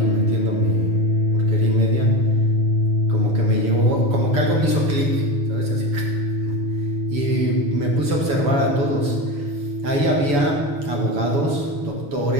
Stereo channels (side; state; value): left; late; 7.0 ms